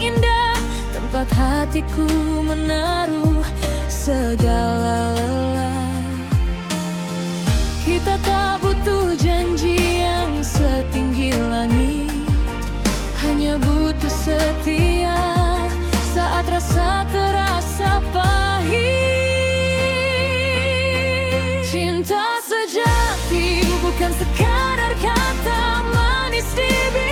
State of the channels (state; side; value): identical; both; correlation 1.00